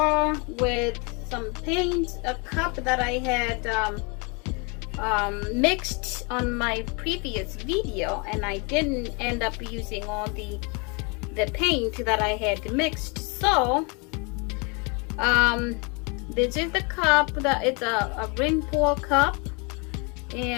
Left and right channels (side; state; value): right; quieter; 31.9 dB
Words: with some paint, a cup that I had mixed on my previous video, and I didn't end up using all the paint that I had mixed. So this is the cup. It's a ring pour cup,